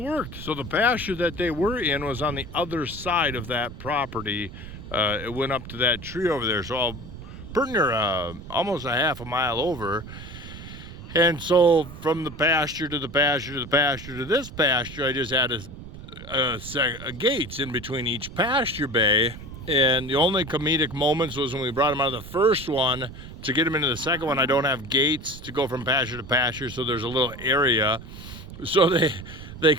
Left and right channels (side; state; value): right; noise; rumble, 14 dB below the sound